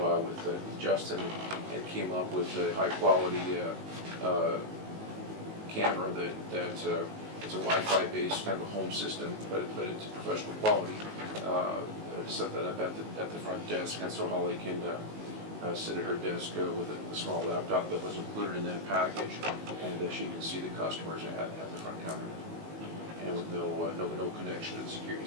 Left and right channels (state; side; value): late; left; 19 ms